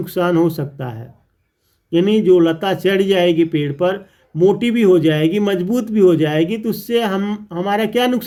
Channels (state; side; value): identical; both; correlation 1.00